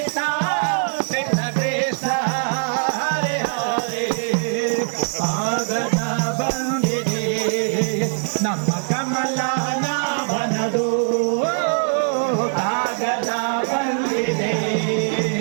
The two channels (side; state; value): left; silent; 65 dB below the other